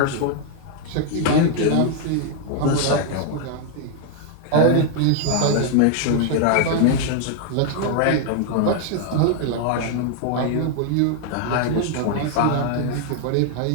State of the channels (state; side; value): different; both; correlation 0.00